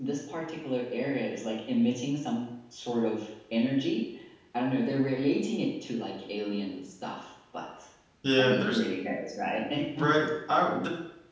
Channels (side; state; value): both; identical; correlation 1.00